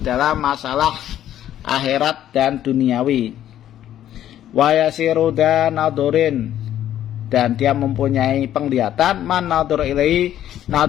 dalam masalah akhirat dan duniawi. Wa yasiru dan nadurin, dan dia mempunyai penglihatan man nadur ilaihi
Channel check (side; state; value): right; quieter; 11.6 dB